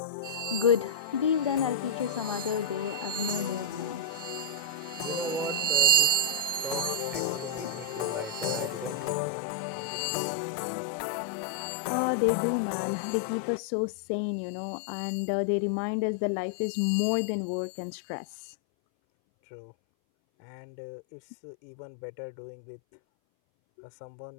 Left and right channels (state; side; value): drops out; right; at 9.2 s